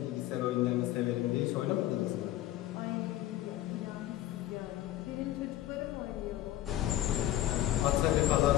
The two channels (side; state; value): right; quieter; 13.8 dB